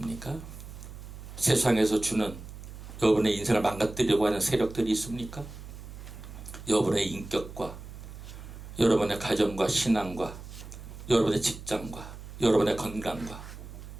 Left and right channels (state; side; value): noise; right; hum, 13 dB below the sound